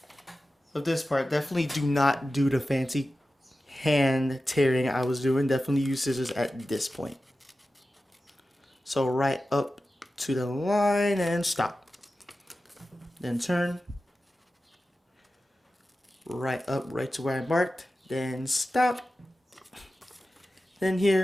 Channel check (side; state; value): both; normal; correlation 0.94